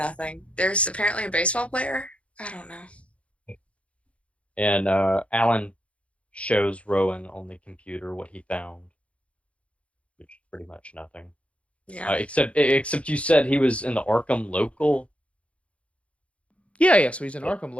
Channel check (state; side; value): late; right; 0.062 ms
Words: There's apparently a baseball player. I don't know. And Alan shows Rowan on the computer what he found, which is pretty much nothing. Yeah. Except you said he was in the Arkham local. Yeah. So he's an Arkham